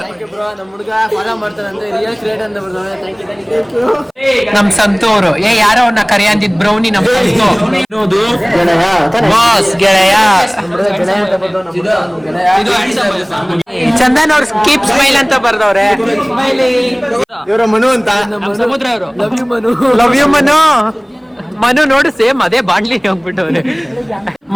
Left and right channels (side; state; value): both; identical; correlation 1.00